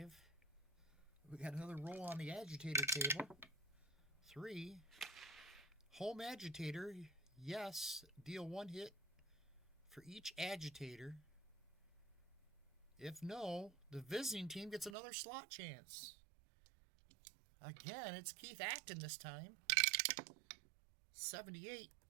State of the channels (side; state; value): left; drops out; at 15.0 s